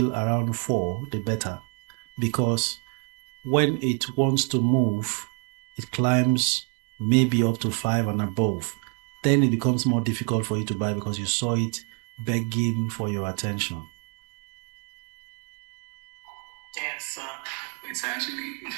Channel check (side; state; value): left; quieter; 39.8 dB